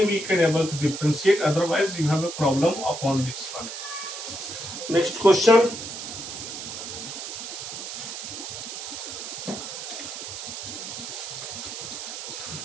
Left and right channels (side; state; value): right; noise; hiss, 8 dB below the sound